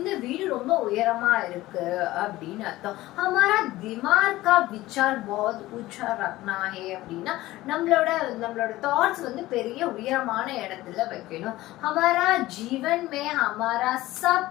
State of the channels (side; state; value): right; quieter; 17.2 dB